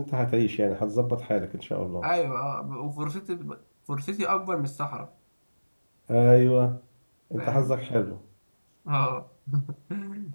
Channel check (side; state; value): both; inverted; correlation -1.00